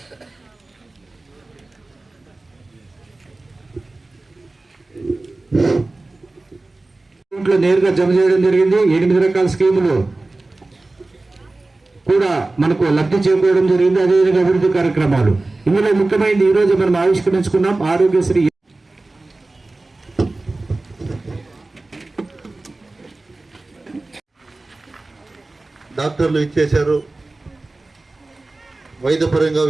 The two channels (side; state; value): left; quieter; 3.1 dB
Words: నేరుగా జమ చేయడం జరిగింది. 8 రకాల స్కీములు కూడా మనకు లబ్ధి చేకూరడం జరిగింది. అదేవిధంగా అభివృద్ధి కార్యక్రమాలు ఇందులో ముఖ్యమైనది ఈ రోజు మనం ఆవిష్కరించుకున్నాం ఆరోగ్యశ్రీ. డాక్టర్లు ఇచ్చేశారు. వైద్యపరంగా